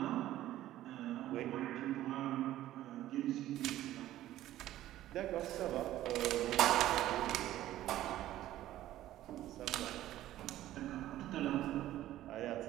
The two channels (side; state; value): left; quieter; 13.9 dB